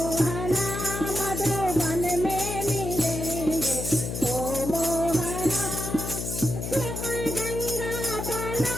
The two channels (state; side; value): noise; left; hum, 5 dB below the sound